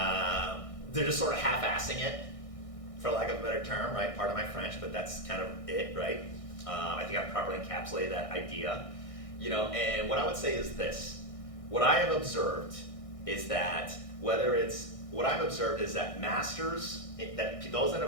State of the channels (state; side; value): late; right; 1.6 ms